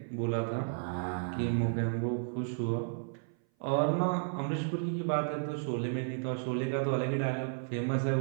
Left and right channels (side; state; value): left; silent; 56 dB below the other